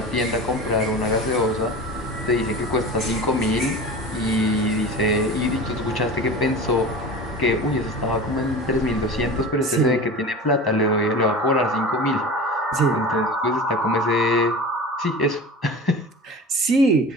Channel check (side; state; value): both; normal; correlation 0.34